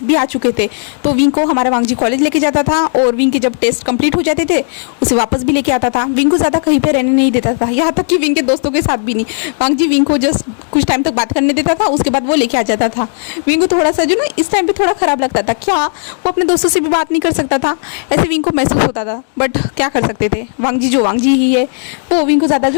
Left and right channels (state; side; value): silent; right; digital silence